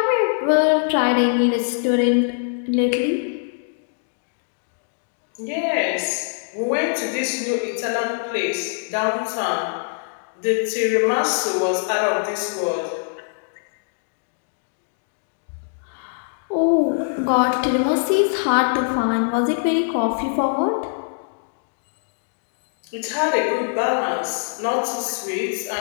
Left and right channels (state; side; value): silent; right; digital silence